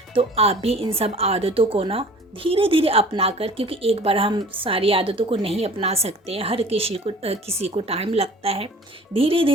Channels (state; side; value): normal; both; correlation 0.46